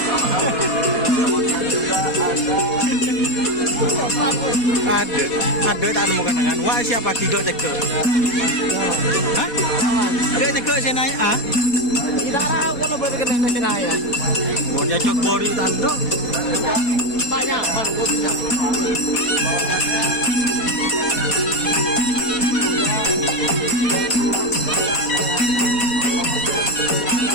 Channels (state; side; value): late; right; 4.2 ms